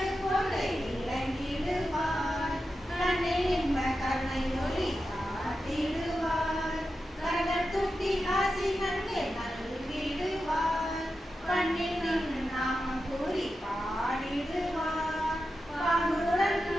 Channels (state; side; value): normal; both; correlation 0.90